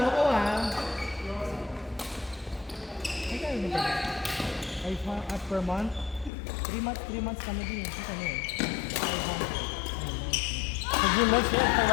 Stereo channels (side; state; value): right; drops out; at 6.3 s